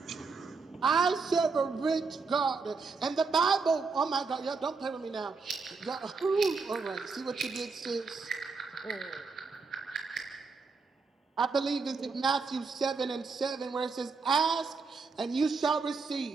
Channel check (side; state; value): left; quieter; 4.6 dB